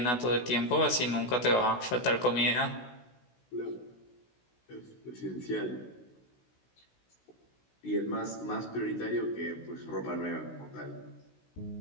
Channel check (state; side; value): late; right; 16 ms